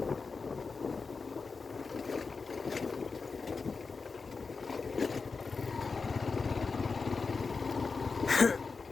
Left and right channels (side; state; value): right; quieter; 4.6 dB